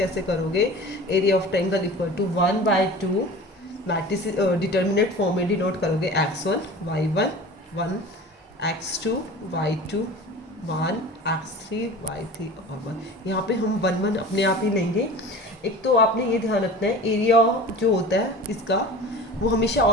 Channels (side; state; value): both; normal; correlation 0.38